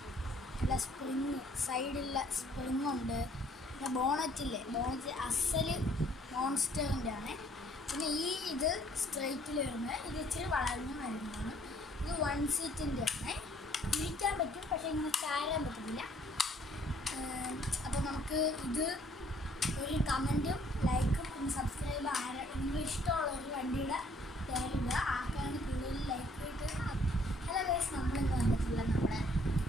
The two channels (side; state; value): both; normal; correlation 0.62